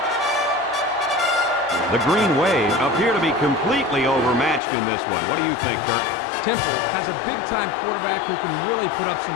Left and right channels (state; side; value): drops out; right; at 4.6 s